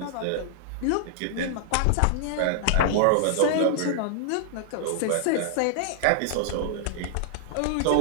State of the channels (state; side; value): different; both; correlation -0.01